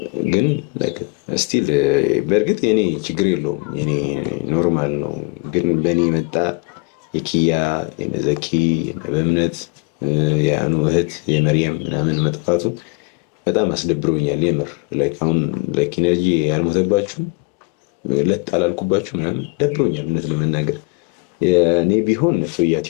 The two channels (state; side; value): quieter; right; 29.3 dB